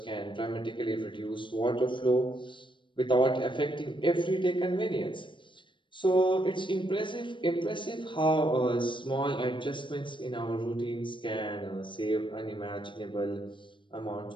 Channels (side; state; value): right; late; 0.24 ms